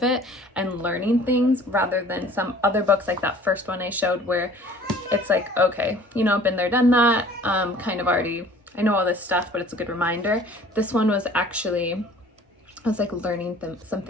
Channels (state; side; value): normal; both; correlation 0.51